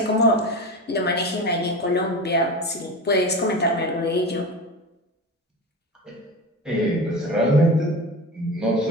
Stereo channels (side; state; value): both; normal; correlation 0.28